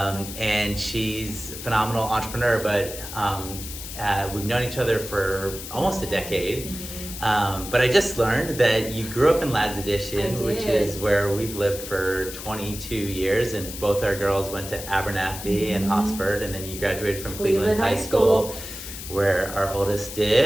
and she's a phenomenal entrepreneur, but we've known each other for almost a decade. But I just learned that you grew up in Lads Edition, which is where we've lived for 22 years, and both our girls went to Abernethy and Hosford, and then you graduated from Cleveland High School, where our oldest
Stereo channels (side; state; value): left; noise; hiss, 10 dB below the sound